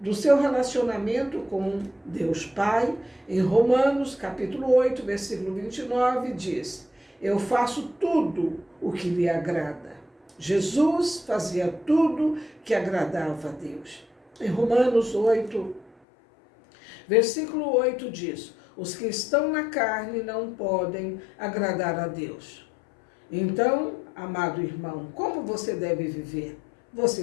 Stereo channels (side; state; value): right; drops out; at 15.9 s